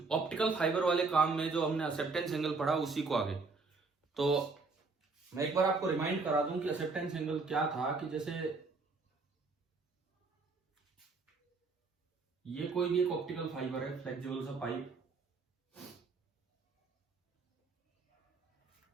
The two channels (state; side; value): quieter; left; 4.1 dB